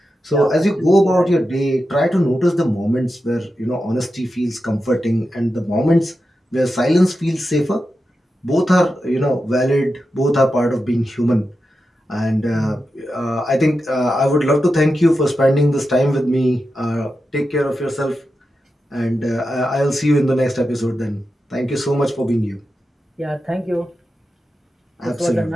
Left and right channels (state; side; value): normal; both; correlation 0.90